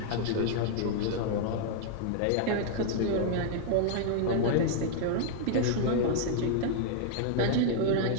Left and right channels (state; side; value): different; both; correlation -0.01